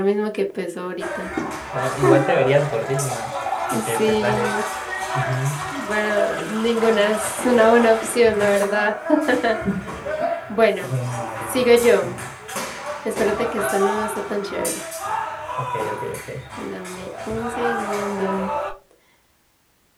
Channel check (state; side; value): identical; both; correlation 1.00